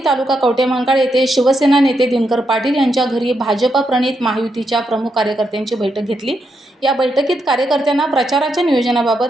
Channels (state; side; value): normal; both; correlation 0.82